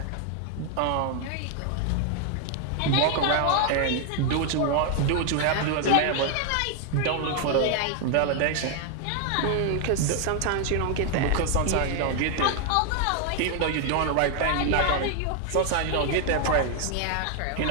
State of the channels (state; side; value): different; both; correlation 0.00